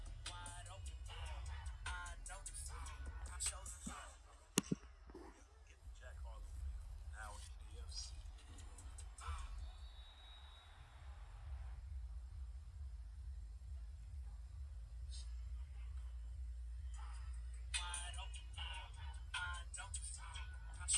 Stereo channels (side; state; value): both; identical; correlation 1.00